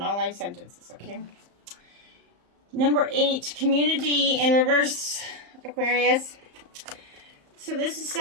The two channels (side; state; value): left; late; 35 ms